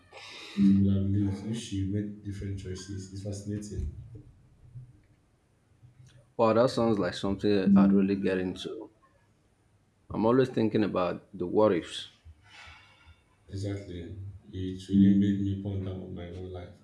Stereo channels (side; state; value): both; identical; correlation 1.00